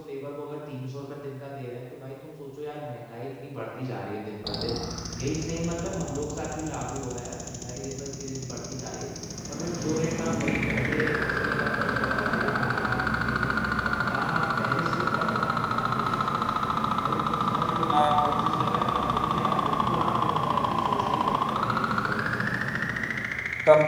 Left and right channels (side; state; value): both; identical; correlation 1.00